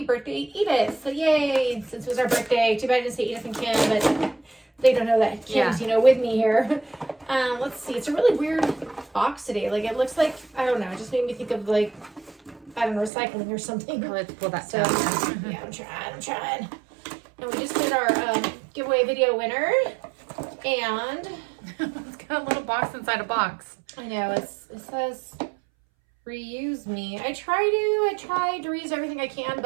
birthday, Edith. So yay, since it was our birthday. Too bad I didn't say Edith and Kim, but they don't know that Kim's, with me here. Let's see. It's a really weird box today. Like, it looks like, I don't know, it just made me think of, like, I don't know, recycling or something. Let's pull that so, down. yeah, I'm trying. And we just did our giveaway video winner. And it's got a little box inside a box. I know, it says reuse me. I tried to reuse everything I can,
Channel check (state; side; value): drops out; left; at 13.1 s